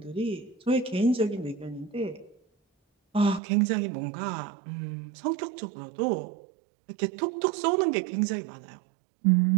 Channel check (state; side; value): drops out; left; at 3.4 s